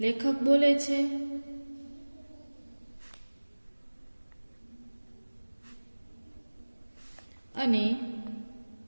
લેખક બોલે છે અને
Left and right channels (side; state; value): both; inverted; correlation -1.00